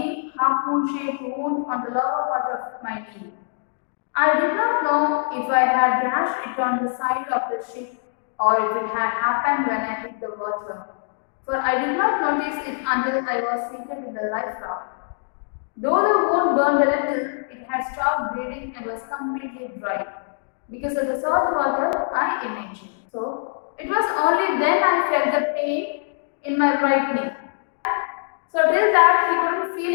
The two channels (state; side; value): silent; right; digital silence